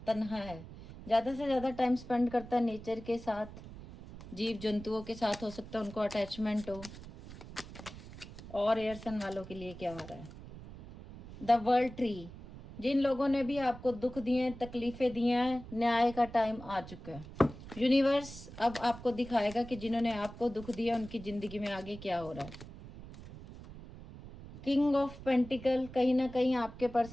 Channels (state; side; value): noise; right; rumble, 15 dB below the sound